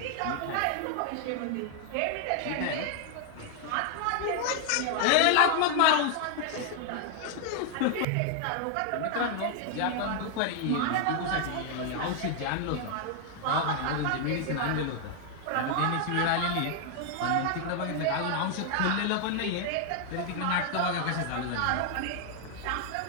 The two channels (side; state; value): both; different; correlation 0.00